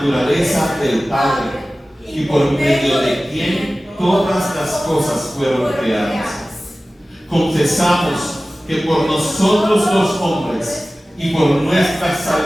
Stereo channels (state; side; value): normal; both; correlation 0.97